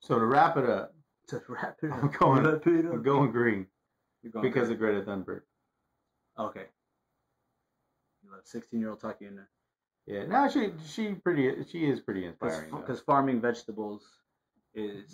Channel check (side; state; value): both; identical; correlation 1.00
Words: to wrap it up, I'm going green because of Greta Thunberg. Okay. You let a 16-year-old talk you into. Yeah, no, she is pretty inspiring. Because farming vegetables